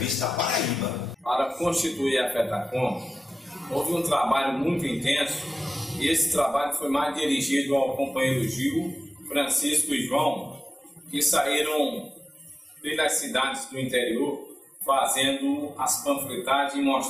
da Paraíba. Para constituir a FETACOM, houve um trabalho muito intenso e esse trabalho foi mais dirigido ao companheiro Gil, Francisco e João, que saíram pelas cidades do interior fazendo as panfletagens e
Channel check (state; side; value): normal; both; correlation 0.95